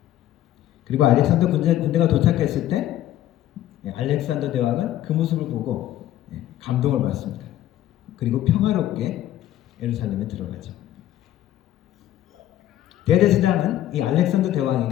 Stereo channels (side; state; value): right; quieter; 13.0 dB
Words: 그리고 알렉산더 군대가 도착했을 때 알렉산더 대왕은 그 모습을 보고 감동을 받습니다. 그리고 평화롭게 예루살렘에 들어가죠. 대제사장은 이 알렉산더